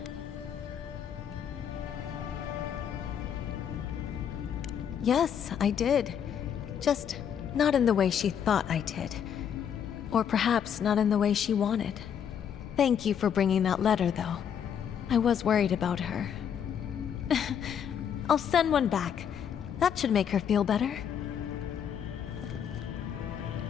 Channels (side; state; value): right; quieter; 8.4 dB